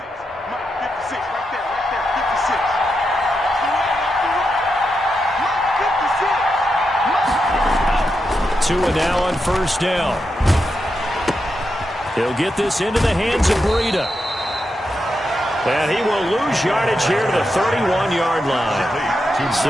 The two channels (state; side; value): normal; both; correlation 0.86